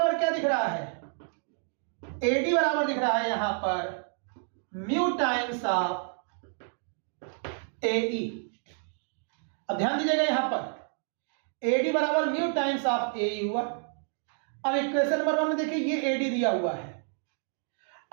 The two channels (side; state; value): left; silent; 58 dB below the other